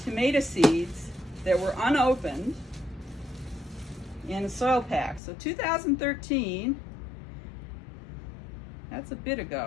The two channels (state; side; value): drops out; right; at 5.2 s